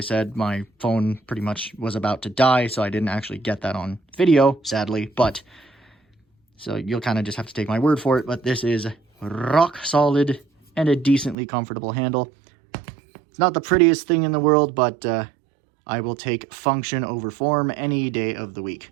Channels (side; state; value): left; drops out; at 11.4 s